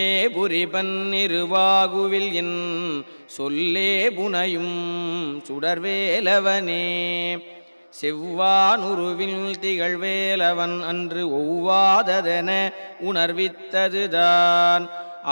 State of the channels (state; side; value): inverted; both; correlation -1.00